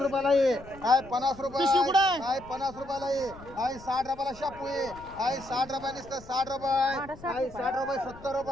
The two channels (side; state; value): left; noise; rumble, 19 dB below the sound